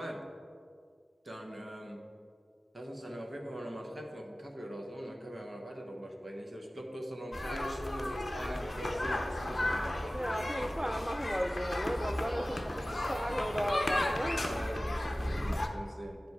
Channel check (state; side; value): normal; both; correlation 0.97